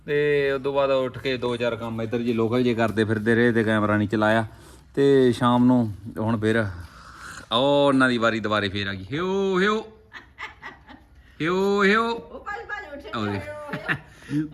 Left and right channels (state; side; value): identical; both; correlation 1.00